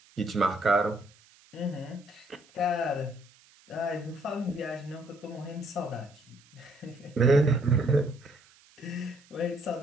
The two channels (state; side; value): noise; right; hiss, 28 dB below the sound